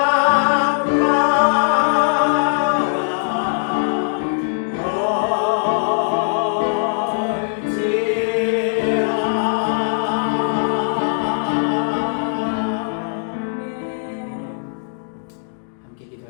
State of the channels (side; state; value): right; silent; digital silence